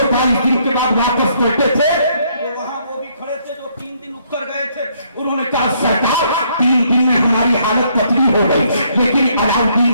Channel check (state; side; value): inverted; both; correlation -0.69